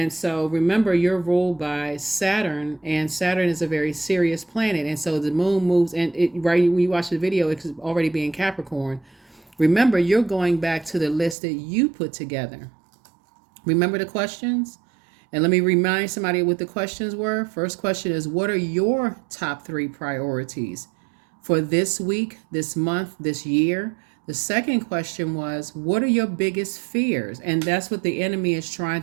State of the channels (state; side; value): drops out; left; at 11.4 s